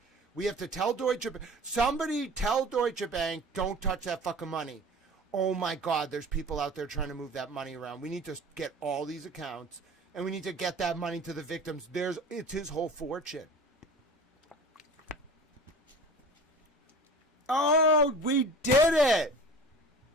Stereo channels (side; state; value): both; normal; correlation 0.40